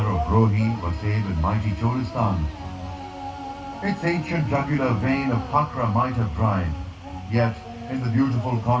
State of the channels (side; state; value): both; identical; correlation 1.00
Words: of Rohi, Wasaib and mighty Cholistan, its ancient jugular vein of Hakra might have dried, yet in the beautiful